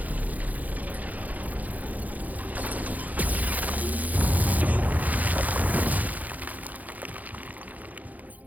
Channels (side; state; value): left; late; 0.079 ms